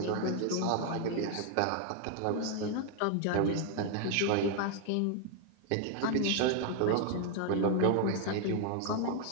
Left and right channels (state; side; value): different; both; correlation 0.00